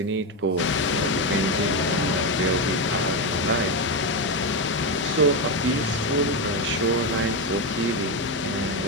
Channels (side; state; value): both; normal; correlation 0.11